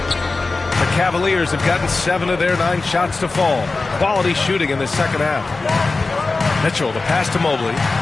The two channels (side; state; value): right; quieter; 3.7 dB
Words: The Cavaliers have gotten 7 of their 9 shots to fall. Quality shooting in the second half. Mitchell, the pass to Mobley.